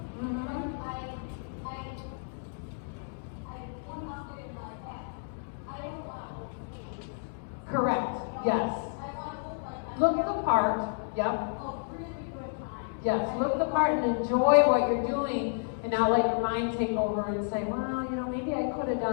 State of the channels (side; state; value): right; silent; digital silence